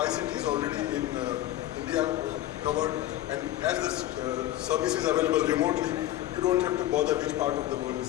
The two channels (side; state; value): right; quieter; 14.1 dB